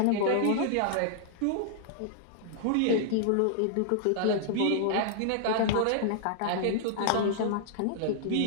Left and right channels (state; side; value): different; both; correlation -0.01